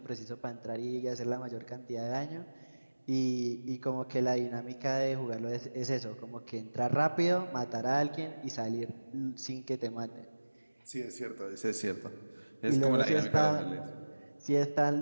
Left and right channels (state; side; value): inverted; both; correlation -1.00